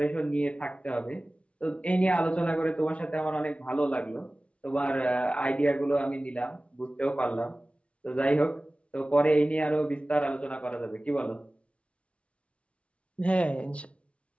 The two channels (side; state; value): right; late; 0.061 ms